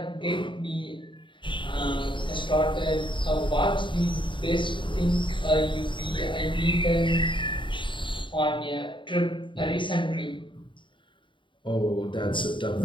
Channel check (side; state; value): right; late; 0.24 ms